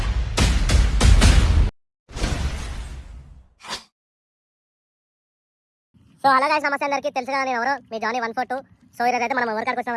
సో అలాగే సమస్య అందరికీ తెలుసు కదా, నేను ఎవరో మీ జానీ 142. సో ఈరోజు అయితే మనం ఎవరి కాడికి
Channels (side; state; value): both; identical; correlation 1.00